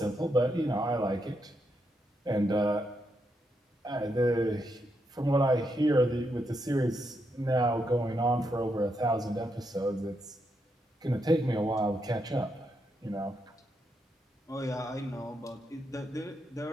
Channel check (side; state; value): both; normal; correlation 0.81